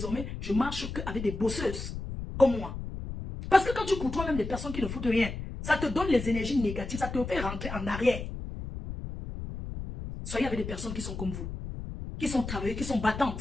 je marche qu'avec des bosseuses comme moi. Parce que quand tu côtoies même des personnes qui ne foutent rien, ça te donne les énergies négatives, ça te fait rentrer en arrière. Soyez avec des personnes qui sont comme vous, qui sont travailleuses, qui sont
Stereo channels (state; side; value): noise; left; rumble, 7 dB below the sound